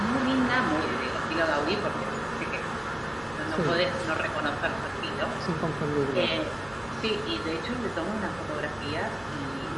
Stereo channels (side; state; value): right; noise; rumble, 23 dB below the sound